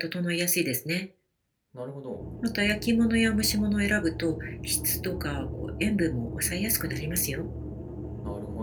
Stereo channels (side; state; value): both; identical; correlation 1.00